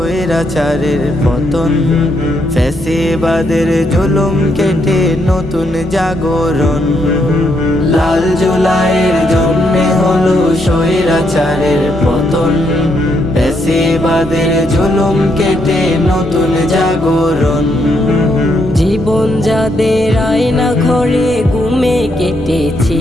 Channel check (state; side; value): normal; both; correlation 0.76